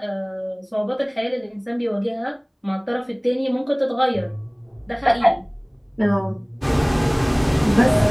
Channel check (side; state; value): both; identical; correlation 1.00